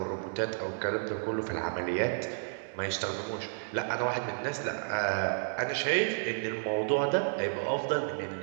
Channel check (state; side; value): silent; left; digital silence